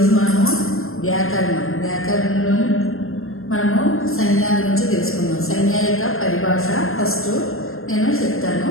మనము వ్యాకరణంలో మనము సంజ్ఞ గురించి తెలుసుకుందాం. సంజ్ఞ యొక్క పరిభాష ఫస్ట్ నేను చెప్తాను,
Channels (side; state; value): right; late; 0.61 ms